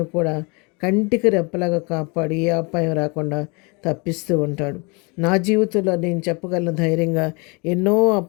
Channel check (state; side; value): quieter; right; 30.0 dB